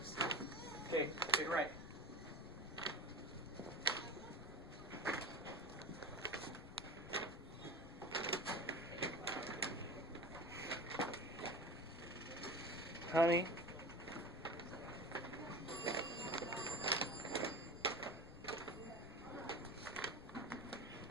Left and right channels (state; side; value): noise; left; rumble, 15 dB below the sound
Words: Okay, get right. Honey.